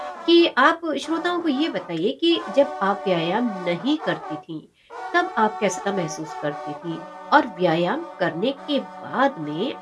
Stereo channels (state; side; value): identical; both; correlation 1.00